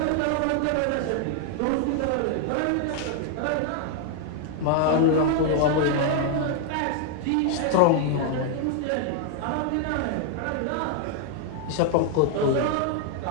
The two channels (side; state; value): both; different; correlation 0.00